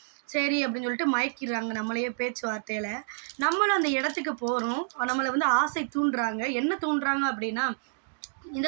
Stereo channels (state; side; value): silent; left; digital silence